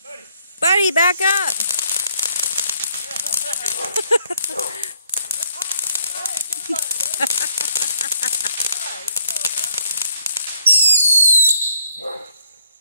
Buddy, back up!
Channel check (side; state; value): both; inverted; correlation -0.67